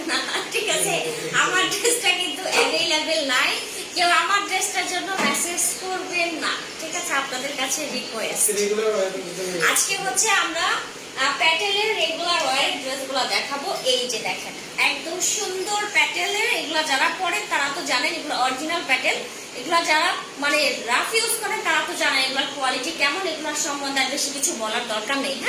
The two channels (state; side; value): identical; both; correlation 1.00